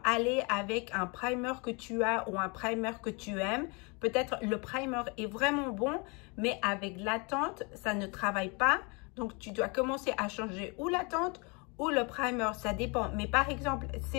aller avec un primer que tu as ou un primer que tu aimes. Peut-être le primer est vraiment bon, mais avec la teinte, ça ne travaille pas. Donc, tu dois commencer à changer ou la teinte ou le primer, ça dépend. Mais par exemple,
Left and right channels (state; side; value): quieter; right; 30.8 dB